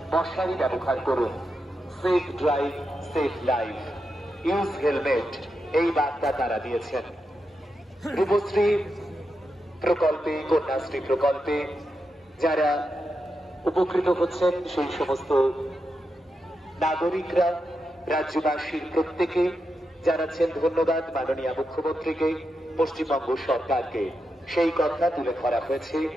মশারি ব্যবহার করুন, safe drive safe life, use helmet, এই বার্তা তারা দিয়েছেন। রূপশ্রী প্রকল্পে, কন্যাশ্রী প্রকল্পে যারা উপকৃত হচ্ছেন সেই সমস্ত নাগরিকরা, রাজ্যবাসীর প্রত্যেকে জানাচ্ছেন ধন্যবাদ মাননীয় মুখ্যমন্ত্রীকে, পশ্চিমবঙ্গ সরকারকে। সেই কথা তুলে ধরা হয়েছে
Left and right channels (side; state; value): both; normal; correlation 0.86